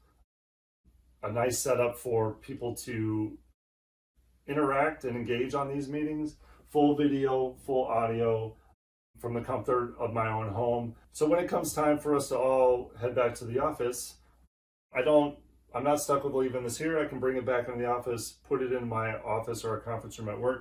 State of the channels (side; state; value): both; identical; correlation 1.00